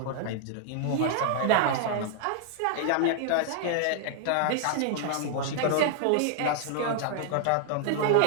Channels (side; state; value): both; different; correlation 0.00